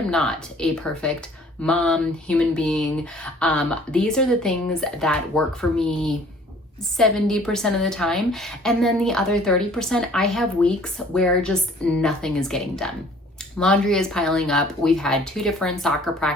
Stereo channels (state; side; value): normal; both; correlation 0.54